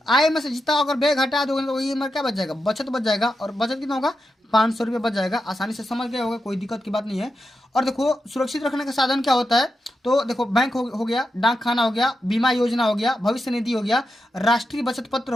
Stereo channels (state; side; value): normal; both; correlation 0.88